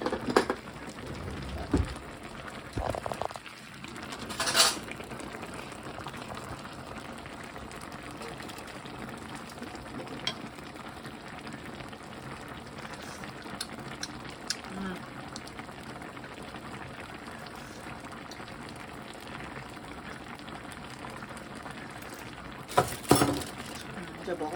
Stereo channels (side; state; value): both; identical; correlation 1.00